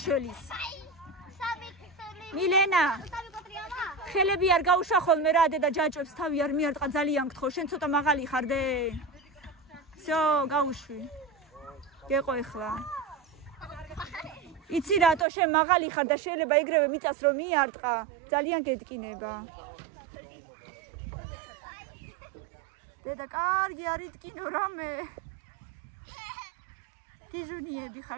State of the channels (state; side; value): drops out; left; at 15.2 s